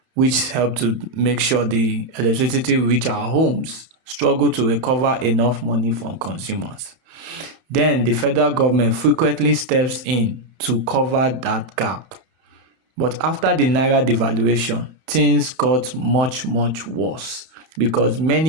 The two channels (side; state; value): left; late; 31 ms